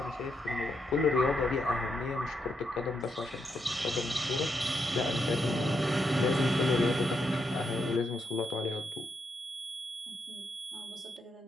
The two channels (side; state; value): both; normal; correlation 0.81